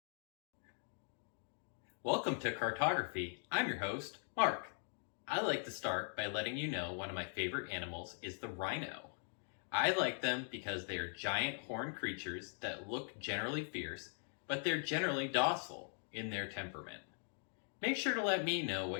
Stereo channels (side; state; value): right; silent; 50 dB below the other